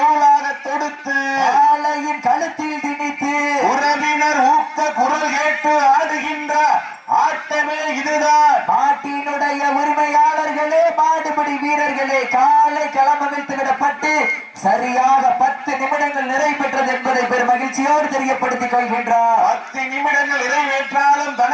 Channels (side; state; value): both; identical; correlation 1.00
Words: தொடுத்து காளையின் கழுத்தில் திணித்து உறவினர் ஊக்க குரல் கேட்டு ஆடுகின்ற ஆட்டமே இதுதான். நாட்டினுடைய உரிமையாளர்களே, மாடுபிடி வீரர்களே, காலை களமமைத்து விடப்பட்டு சரியாக 10 நிமிடங்கள் நிறைவேற்றது என்பதை பெரும் மகிழ்ச்சியோடு தெரியப்படுத்திக் கொள்கின்றார். 10 நிமிடங்கள் நிறைவேற்றாலும்